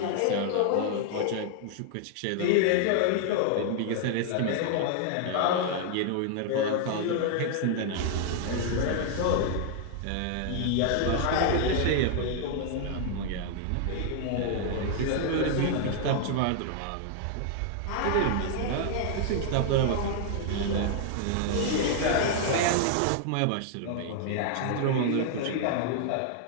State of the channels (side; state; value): both; different; correlation -0.01